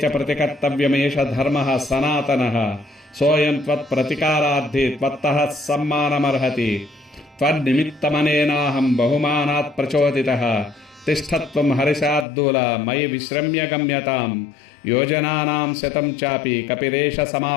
చ ప్రతికర్తవ్యమేష ధర్మః సనాతనః సోయం త్వత్ప్రతికారార్థి త్వత్తః సమ్మానమర్హతి త్వన్నిమిత్తమనేనాహం బహుమానాత్ ప్రచోదితః తిష్ఠత్వం హరిశార్దూల మయి విశ్రమ్య గమ్యతాం యోజనానాం శతం చాపి కపిరేష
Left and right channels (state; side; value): drops out; right; at 12.2 s